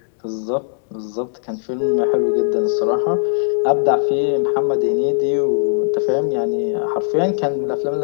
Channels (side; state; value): right; silent; digital silence